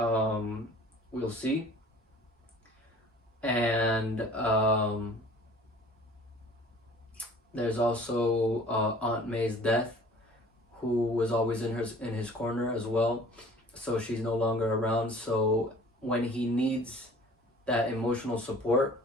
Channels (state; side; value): normal; both; correlation 0.48